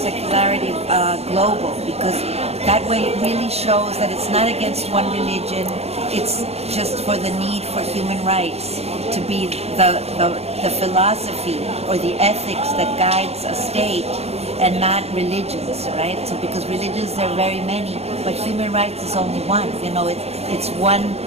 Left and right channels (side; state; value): left; late; 0.30 ms